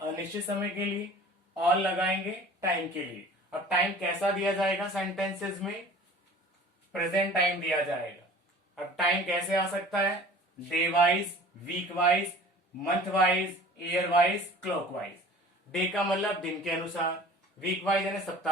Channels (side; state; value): both; normal; correlation 0.45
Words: समय के लिए, ऑल लगाएंगे टाइम के लिए। अब टाइम कैसा दिया जाएगा सेंटेंसेस में? प्रेजेंट टाइम दिया जाएगा। अब टाइम कैसे आ सकता है? Day wise, week wise, month wise, year wise, clockwise. Day का मतलब दिन के अनुसार, वीक वाइज यानी